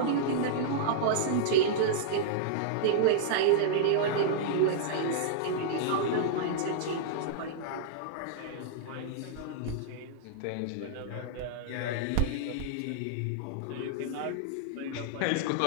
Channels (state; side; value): different; both; correlation -0.02